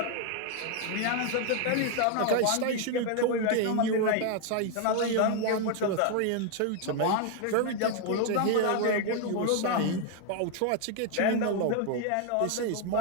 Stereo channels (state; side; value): different; both; correlation 0.01